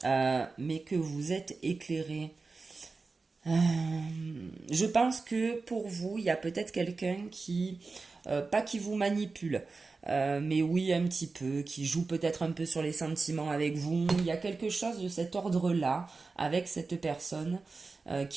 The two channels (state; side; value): quieter; left; 4.0 dB